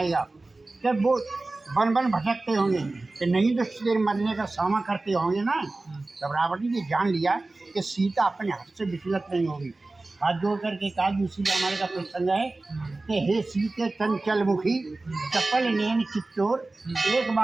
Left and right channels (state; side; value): quieter; left; 3.2 dB